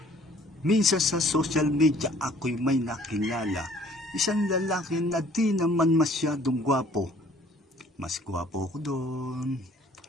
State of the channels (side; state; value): both; normal; correlation 0.57